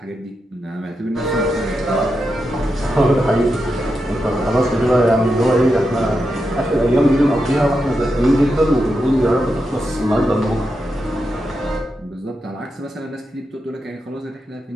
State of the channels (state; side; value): normal; both; correlation 0.87